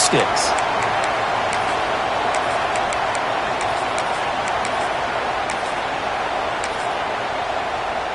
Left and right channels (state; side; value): identical; both; correlation 1.00